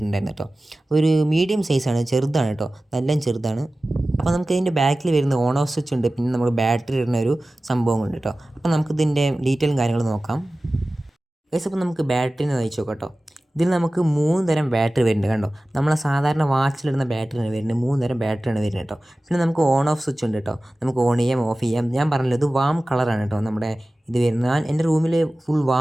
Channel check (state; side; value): normal; both; correlation 0.97